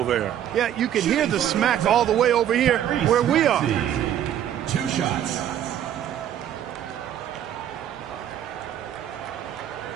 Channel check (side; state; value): left; quieter; 10.6 dB